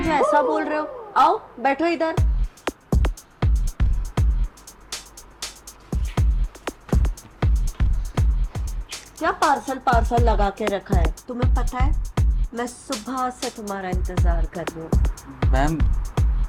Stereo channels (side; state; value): both; identical; correlation 1.00